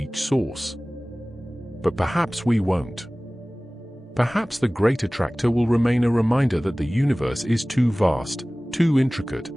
source. But perhaps we won't. Perhaps the Great Attractor will remain a reminder that the universe is too vast, too intricate,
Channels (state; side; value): normal; both; correlation 0.98